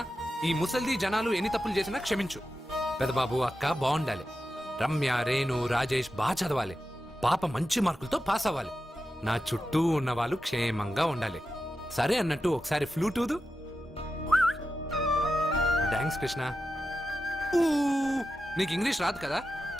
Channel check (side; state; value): both; normal; correlation 0.91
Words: ఈ ముసల్ది జనాలు ఎన్ని తప్పులు చేసినా క్షమించు. పెదబాబు, అక్క బాగుండాలి. రమ్య, రేణు, రాజేష్ బాగా చదవాలి. పాప మంచి మార్కులతో పాస్ అవ్వాలి. నా చుట్టూ ఉన్న వాళ్ళు క్షేమంగా ఉండాలి. సరే అన్నట్టు ఒకసారి ఫ్లూట్ ఊదు. థ్యాంక్స్ కృష్ణ. ఊ, నీకు ఇంగ్లీష్ రాదు కదా,